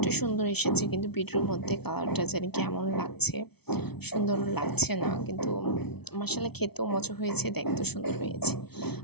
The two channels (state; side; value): late; right; 0.98 ms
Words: সুন্দর এসেছে, কিন্তু ভিডিওর মধ্যে কালারটা জানি কেমন লাগছে, সুন্দর লাগছে না, কিন্তু মাশাআল্লাহ খেতেও মজা হয়েছে, দেখতেও সুন্দর হয়েছে।